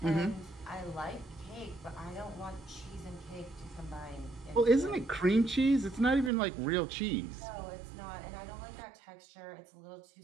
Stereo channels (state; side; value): drops out; left; at 6.3 s